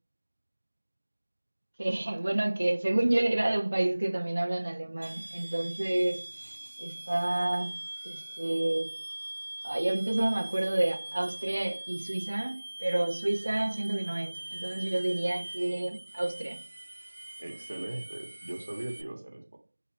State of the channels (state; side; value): inverted; both; correlation -1.00